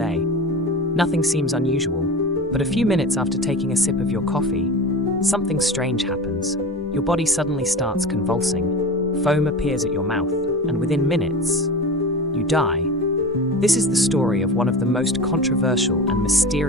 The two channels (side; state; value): both; normal; correlation 0.30